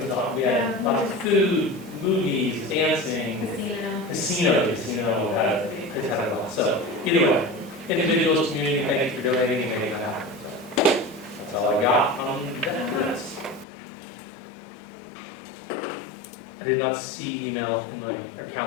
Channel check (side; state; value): right; drops out; at 13.7 s